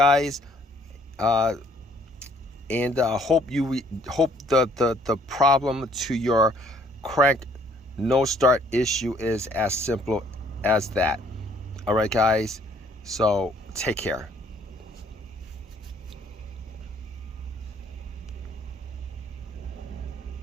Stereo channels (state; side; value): normal; both; correlation 0.61